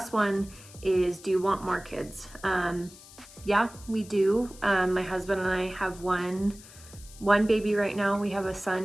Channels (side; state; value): left; noise; hiss, 20 dB below the sound